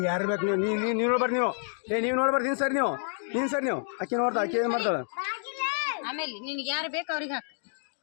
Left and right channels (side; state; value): right; silent; digital silence